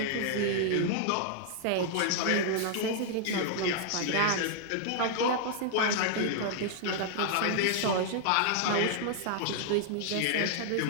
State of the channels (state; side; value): different; both; correlation 0.00